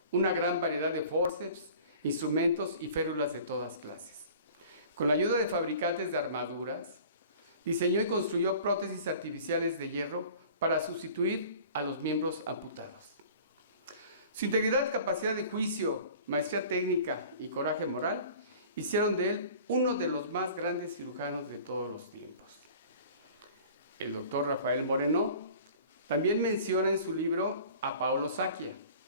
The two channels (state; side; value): inverted; both; correlation -0.45